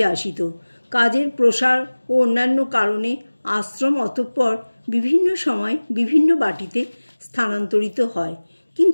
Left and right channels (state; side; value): inverted; both; correlation -1.00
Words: আসিত। কাজের প্রসার ও অন্যান্য কারণে আশ্রম অতঃপর বিভিন্ন সময় বিভিন্ন বাটিতে স্থানান্তরিত হয়,